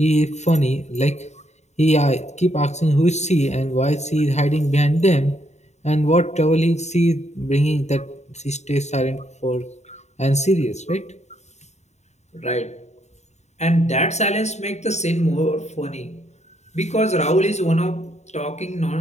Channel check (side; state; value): right; late; 0.33 ms